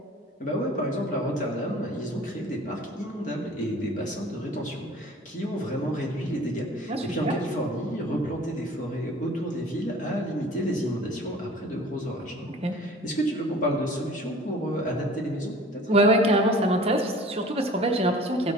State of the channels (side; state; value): both; normal; correlation 0.47